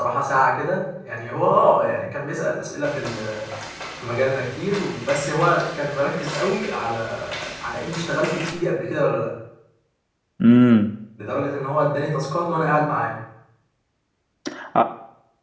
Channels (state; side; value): identical; both; correlation 1.00